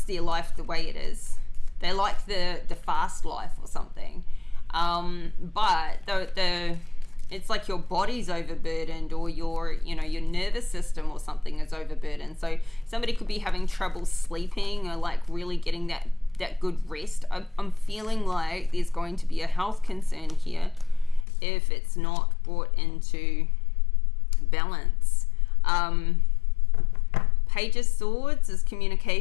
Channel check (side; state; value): right; drops out; at 21.2 s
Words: their life the way it is. They like the fast life or something. But it's like your body's overburdened, or your nervous system or something is overburdened. So somebody could be having trouble sleeping, or like really getting that good rest. I'm feeling like there's going to be a health concern here if it's not brought into balance. Page of Swords is